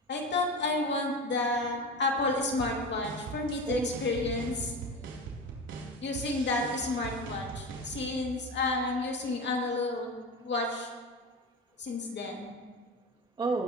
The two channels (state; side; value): normal; both; correlation 0.26